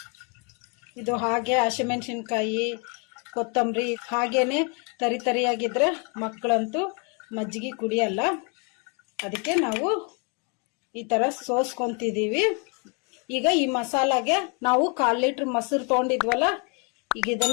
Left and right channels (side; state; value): right; quieter; 34.2 dB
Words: ಇದು ಹಾಗೆ ಹಸಿಮೆಣಸಿನಕಾಯಿ, ಕೊತ್ತಂಬರಿ ಹಾಗೇನೆ ತರಿ ತರಿಯಾಗಿದ್ರೆ ಮಕ್ಕಳಂತೂ ಮಜ್ಜಿಗೆ ಕುಡಿಯಲ್ಲ. ಅದಕ್ಕೆ ನಾವು ಈ ತರ ಸೋಸ್ಕೊಂತಿದೀವಿ. ಈಗ ಈ ಮಸಾಲಾಗೆ ನಾವು 1/4 ಲೀಟರ್ ಮೊಸರು ತಗೊಂಡಿದ್ವಲ್ಲ, ಈಗ